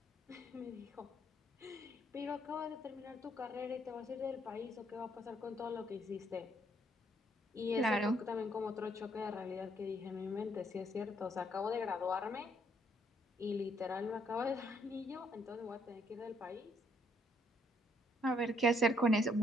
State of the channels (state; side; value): normal; both; correlation 0.68